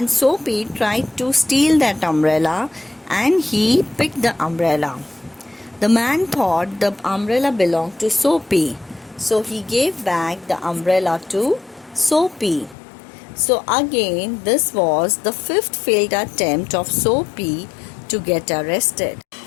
Soapy tried to steal that umbrella and he picked the umbrella. The man thought the umbrella belonged to Soapy. So he gave back the umbrella to Soapy. So again, this was the fifth failed attempt of Soapy to get arrested.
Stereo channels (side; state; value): right; drops out; at 12.8 s